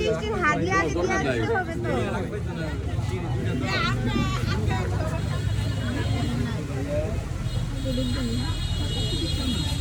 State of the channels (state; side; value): identical; both; correlation 1.00